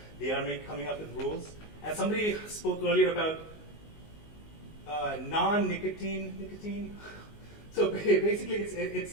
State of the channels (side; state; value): right; late; 19 ms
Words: They are coming up with rules. And somebody spoke earlier about nicotine. So basically,